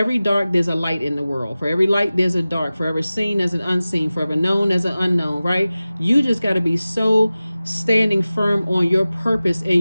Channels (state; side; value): inverted; both; correlation -0.96